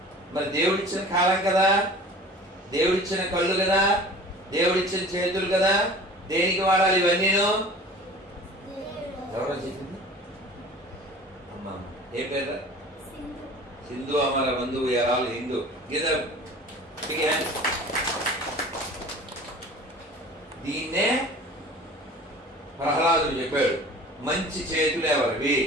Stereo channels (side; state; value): both; normal; correlation 0.43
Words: మరి దేవుడిచ్చిన కాలం కదా, దేవుడిచ్చిన కళ్ళు కదా, దేవుడిచ్చిన చేతులు కదా, దేనికి వాడాలి ఇవన్నీను? ఎవరో చెప్పింది అమ్మ, ఏ పేరు? సింధు అమర బంధువు ఎరాలు హిందూ గీత. దీన్నే ప్రహ్లాదుడు చెప్పాడు, మంచి చేతులు ఎవరివి?